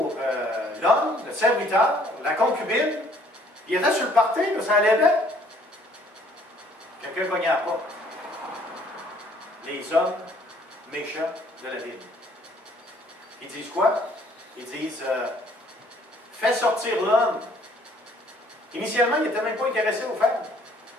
l'homme, le serviteur, la concubine. Il était sur le party, là, ça allait bien. Quelqu'un cognait à la porte. Les hommes méchants de la ville. Ils disent quoi? Ils disent, fais sortir l'homme. Initialement, il n'était même pas intéressé aux femmes.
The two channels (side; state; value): both; normal; correlation 0.61